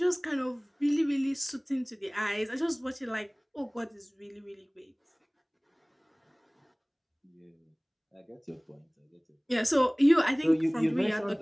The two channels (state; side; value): identical; both; correlation 1.00